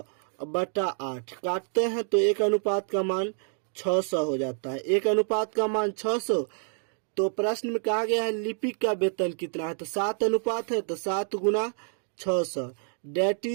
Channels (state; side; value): silent; left; 59 dB below the other